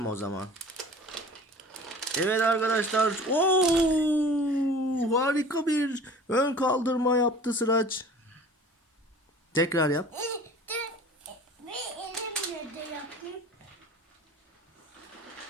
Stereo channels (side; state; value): both; normal; correlation 0.43